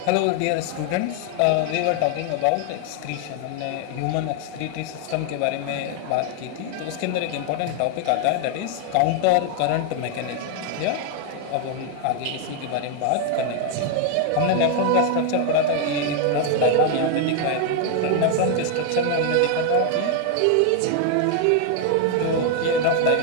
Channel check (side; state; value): both; different; correlation 0.01